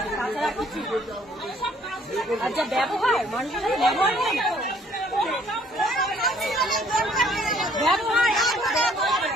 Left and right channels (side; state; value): both; normal; correlation 0.61